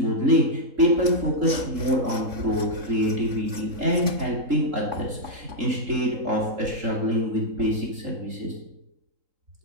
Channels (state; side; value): late; left; 3.6 ms